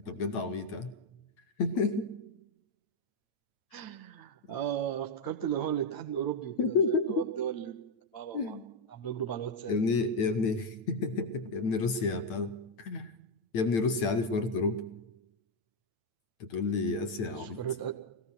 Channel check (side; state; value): right; late; 9.0 ms